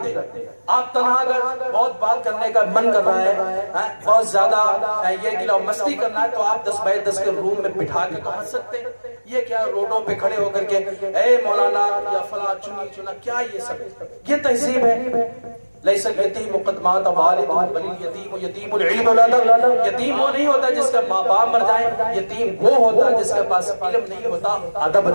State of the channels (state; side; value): inverted; both; correlation -1.00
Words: دے. آپ تنہا اگر بہت بات کرنے کا من کر رہا ہے، بہت زیادہ یہ گلا مستی کرنا ہے، تو آپ 10 بائی 10 کے روم میں بٹھا کے تو ہنس سکتے ہیں. یہ کیا روڈوں پہ کھڑے ہو کر کے اے مولانا یا فلاں چنی چنا، کیا یہ سب یہ تہذیب ہے؟ لیس الیتیم قدمات والد بل الیتیم یتیم العلم ولادہ. یتیم وہ نہیں ہوتا جس کا ماں باپ مر جائیں، یتیم وہ ہوتا جس کے پاس علم نہیں ہوتا، ادب